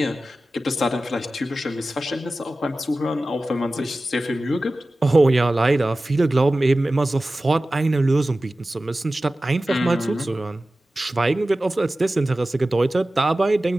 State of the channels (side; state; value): both; normal; correlation 0.96